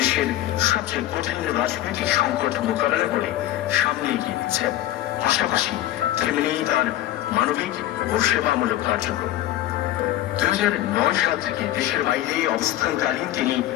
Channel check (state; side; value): quieter; right; 14.2 dB